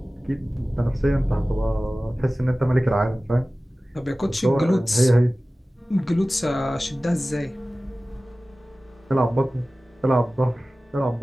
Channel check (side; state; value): both; normal; correlation 0.97